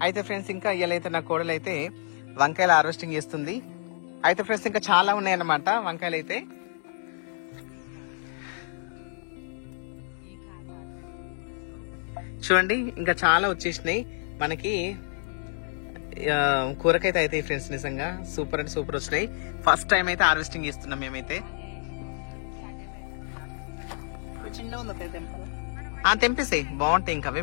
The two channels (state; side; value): silent; right; digital silence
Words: అయితే ఫ్రెండ్స్, ఇంకా ఇయ్యాలైతే నా కోడలు అయితే వంకాయలు హార్వెస్టింగ్ చేస్తుంది. అయితే ఫ్రెండ్స్, ఇంకా చాలా ఉన్నాయన్నమాట వంకాయలు అయితే. చూడండి, ఇంకా చాలా వచ్చేసినాయి మనకి. కూరకైతే అయితే ఫ్రెండ్స్ నిజంగా సూపర్ అంటే సూపర్ వచ్చినాయి. ఫస్ట్ టైం అయితే హార్వెస్టింగ్ చేస్తున్నాం మేమైతే. తెంపేసాయి, బాగుంటాయి, ఇంకా అవే